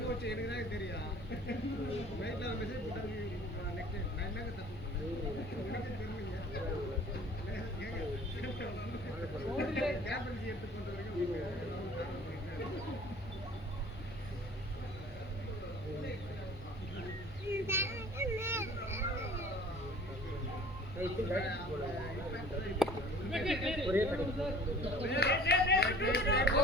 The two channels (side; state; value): both; normal; correlation 0.48